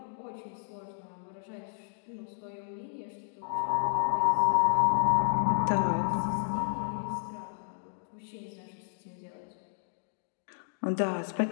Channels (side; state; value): right; silent; digital silence